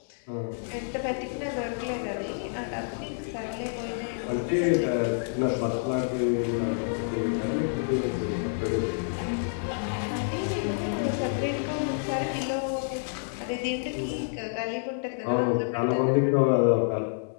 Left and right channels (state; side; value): silent; right; 59 dB below the other